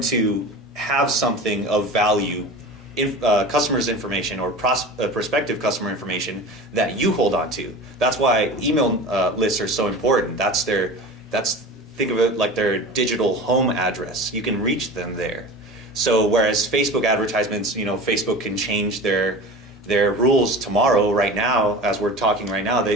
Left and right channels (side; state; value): both; normal; correlation 0.34